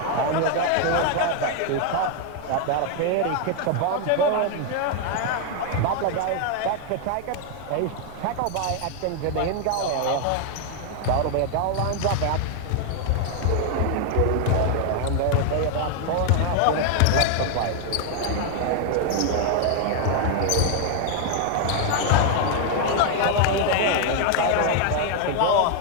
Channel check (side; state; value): both; different; correlation 0.00